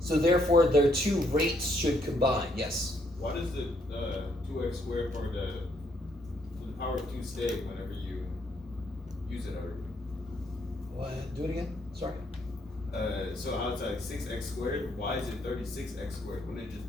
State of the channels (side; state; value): both; normal; correlation 0.71